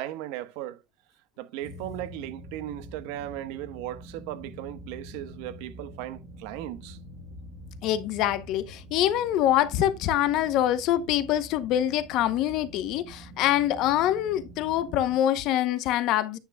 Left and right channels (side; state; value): right; quieter; 9.3 dB